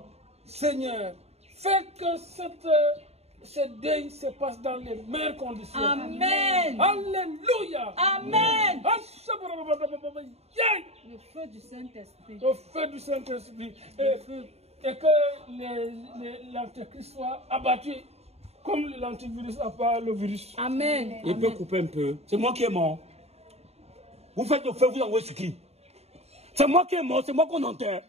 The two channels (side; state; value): left; late; 0.30 ms